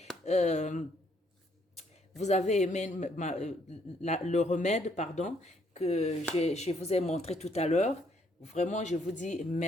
le remède, pardon, que je vous ai montré tout à l'heure. Vraiment, je vous dis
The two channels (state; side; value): normal; both; correlation 0.69